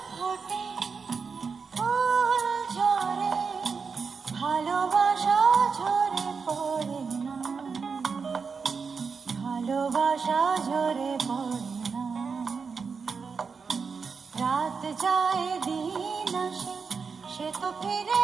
ফোটে ফুল ঝরে ভালোবাসা ঝরে পড়ে না, ভালোবাসা ঝরে পড়ে না। রাত যায় দিন আসে, সে তো ফিরে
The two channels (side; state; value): left; quieter; 5.4 dB